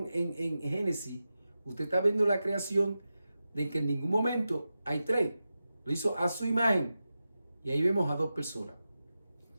en Génesis, usted está viendo la creación de que en ningún momento hay tres. Lo hizo a su imagen. Y ahí vemos a dos personas.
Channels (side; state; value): both; inverted; correlation -0.92